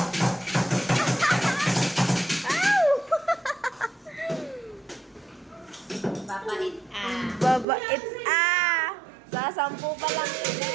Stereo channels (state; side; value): drops out; left; at 7.7 s